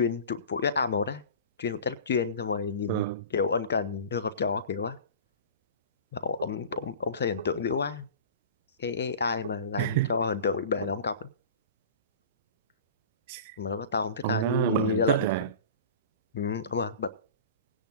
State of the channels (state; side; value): inverted; both; correlation -0.37